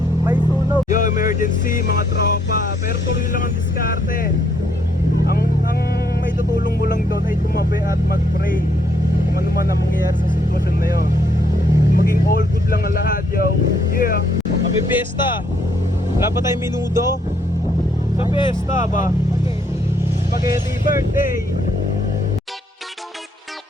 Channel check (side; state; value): both; normal; correlation 0.70